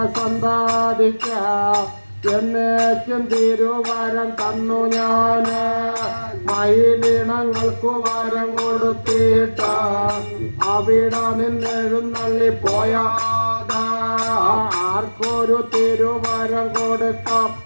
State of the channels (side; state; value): both; inverted; correlation -1.00